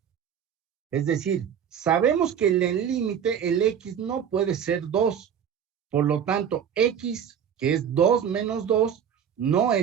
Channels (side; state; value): left; quieter; 8.3 dB